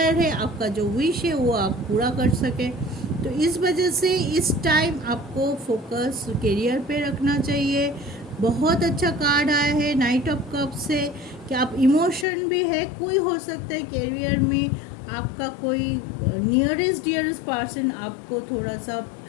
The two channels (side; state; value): right; drops out; at 12.2 s